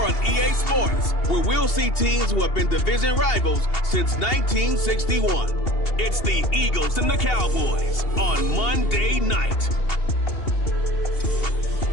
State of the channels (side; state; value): right; late; 2.8 ms